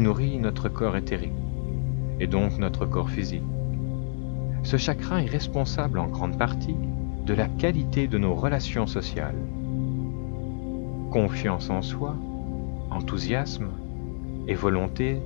nourrit notre corps éthérique, et donc notre corps physique. Ce chakra est responsable en grande partie de la qualité de nos relations sociales. Confiance en soi, enthousiasme et volonté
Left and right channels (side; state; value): right; silent; 60 dB below the other